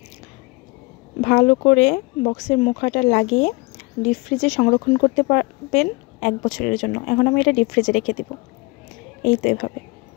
ভালো করে বক্সের মুখাটা লাগিয়ে ডিপ ফ্রিজে সংরক্ষণ করতে পারবেন 1 বছরের জন্য। এখন আমি এটা ডিপ ফ্রিজে রেখে দিব। এই তো এভাবে।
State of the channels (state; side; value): quieter; right; 25.6 dB